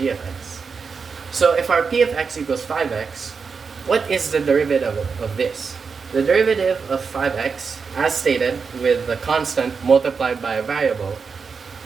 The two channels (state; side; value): quieter; left; 5.4 dB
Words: of x. So if our p of x equals 5x, what is the derivative of this? The derivative of 5x, as stated with the constant multiplied by a variable,